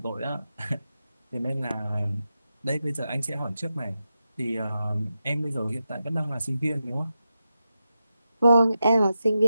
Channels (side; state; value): both; inverted; correlation -0.89